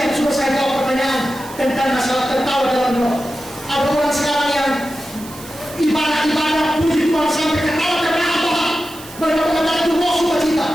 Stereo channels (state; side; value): noise; right; hiss, 17 dB below the sound